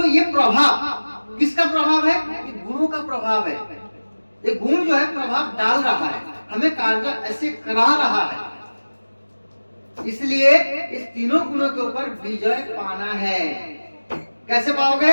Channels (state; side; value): inverted; both; correlation -1.00